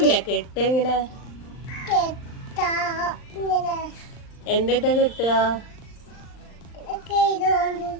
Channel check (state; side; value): late; right; 39 ms